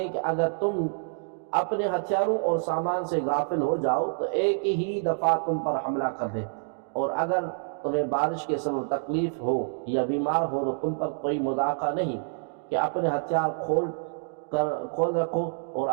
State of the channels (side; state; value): left; silent; digital silence